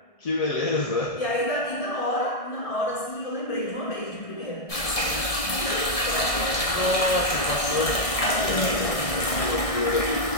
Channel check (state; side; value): late; right; 1.7 ms